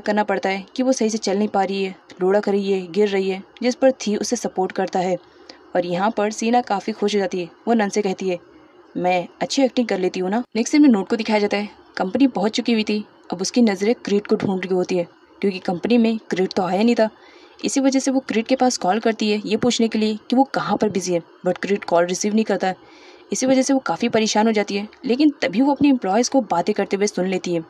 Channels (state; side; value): identical; both; correlation 1.00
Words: करना पड़ता है कि वो सही से चल नहीं पा रही है, रोड़ा कर रही है, गिर रही है, जिस पर थी उसे सपोर्ट करता है। और यहाँ पर सीना काफ़ी खुश हो जाती है। वो नन से कहती है, मैं अच्छी एक्टिंग कर लेती हूँ ना। नेक्स्ट सीन में नोट को दिखाया जाता है, कंपनी पहुँच चुकी हुई थी। अब उसकी नज़रें क्रीड को ढूंढ रही होती है, क्योंकि कंपनी में क्रीड तो आया नहीं था। इसी वजह से वो क्रीड के पास कॉल करती है ये पूछने के लिए कि वो कहाँ पर बिजी है, बट क्रीड कॉल रिसीव नहीं करता है। इसी वजह से वो काफ़ी परेशान हो जाती है, लेकिन तभी वो अपने एम्प्लॉयज़ को बातें करते हुए सुन लेती है।